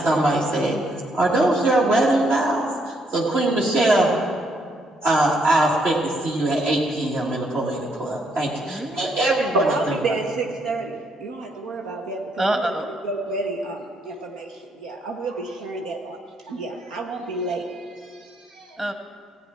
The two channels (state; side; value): normal; both; correlation 0.73